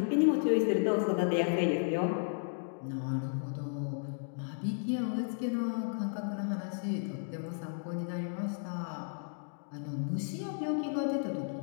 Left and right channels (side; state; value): right; silent; digital silence